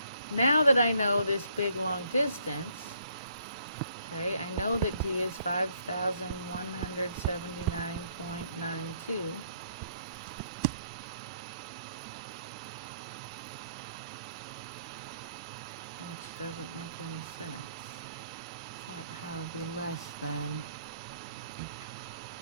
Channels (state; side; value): inverted; both; correlation -0.68